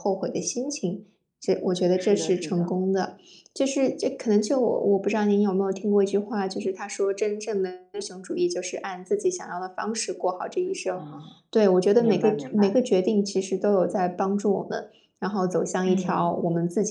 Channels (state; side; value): identical; both; correlation 1.00